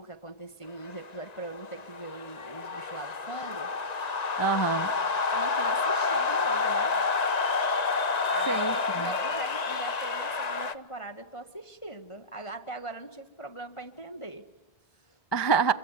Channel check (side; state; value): right; late; 1.9 ms